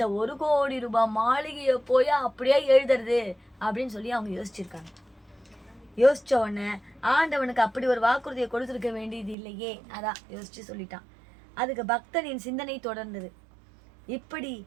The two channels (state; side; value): drops out; left; at 9.3 s